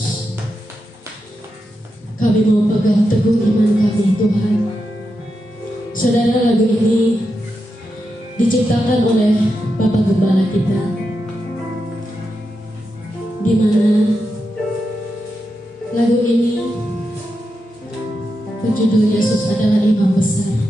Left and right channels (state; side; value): normal; both; correlation 0.87